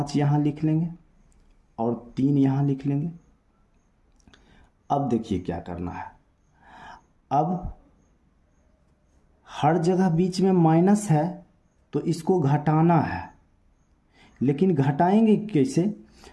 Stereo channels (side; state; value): both; identical; correlation 1.00